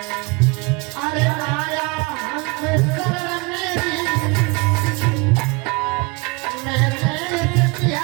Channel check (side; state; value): left; quieter; 27.0 dB